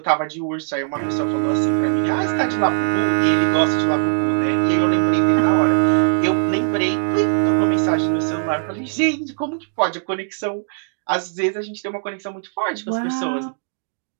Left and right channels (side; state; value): left; silent; digital silence